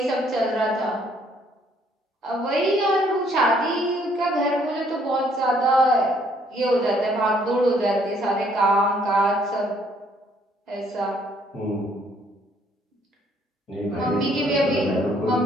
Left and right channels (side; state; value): both; normal; correlation 0.65